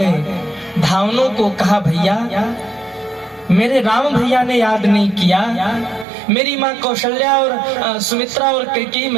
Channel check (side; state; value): left; drops out; at 6.1 s